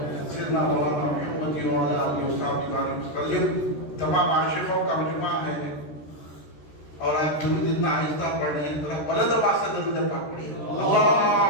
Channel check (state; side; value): late; right; 13 ms